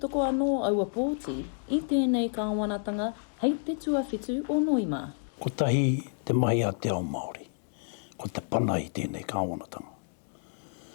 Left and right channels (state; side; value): silent; right; digital silence